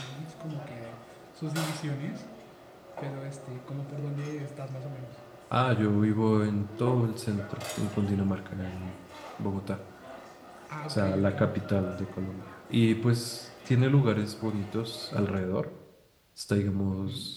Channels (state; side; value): identical; both; correlation 1.00